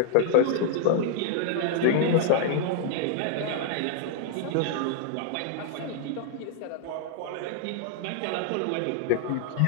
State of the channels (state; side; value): different; both; correlation 0.00